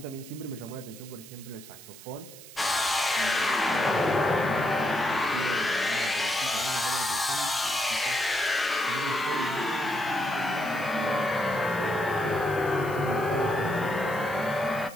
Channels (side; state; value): right; noise; hiss, 17 dB below the sound